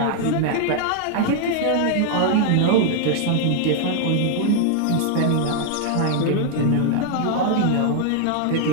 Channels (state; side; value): different; both; correlation 0.00